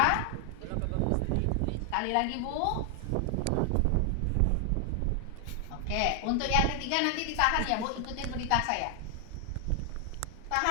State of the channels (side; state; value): both; different; correlation 0.00